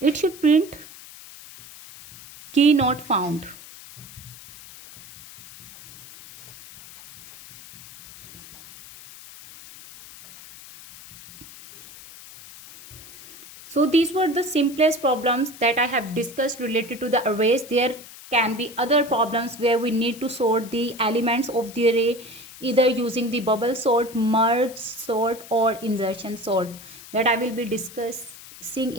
should print key not found. So these were the simplest problems that I have discussed related to the arrays. There can be other problems where we need to sort the elements of the array either using the bubble sort, merge sort, or insertion sort, that I will be discussing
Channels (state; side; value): noise; left; hiss, 18 dB below the sound